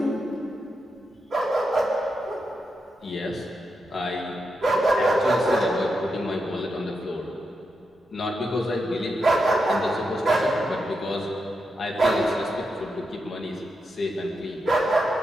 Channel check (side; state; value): both; normal; correlation 0.86